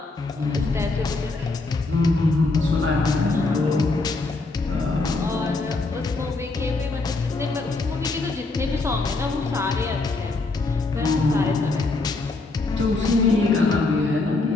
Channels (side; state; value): right; quieter; 3.4 dB